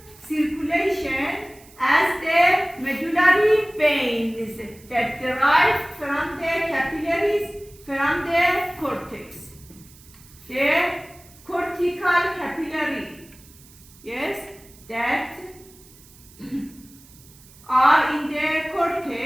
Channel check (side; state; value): right; noise; hiss, 24 dB below the sound